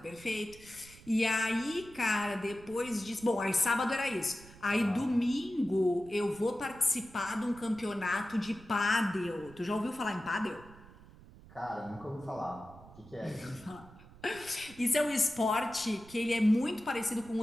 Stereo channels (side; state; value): right; noise; rumble, 21 dB below the sound